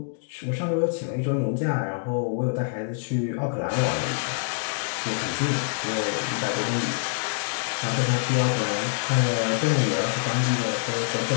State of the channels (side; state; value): right; silent; digital silence